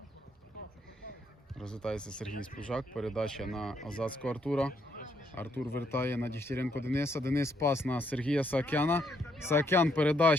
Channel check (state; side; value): normal; both; correlation 0.74